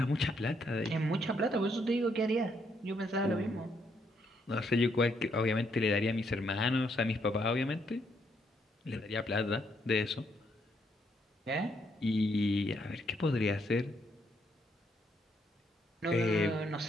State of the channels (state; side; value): normal; both; correlation 0.74